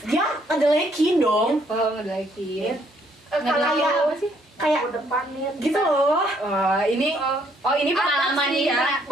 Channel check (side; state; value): both; normal; correlation 0.68